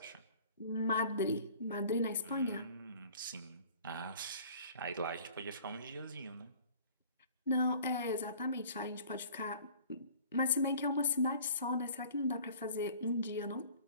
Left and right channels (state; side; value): inverted; both; correlation -0.49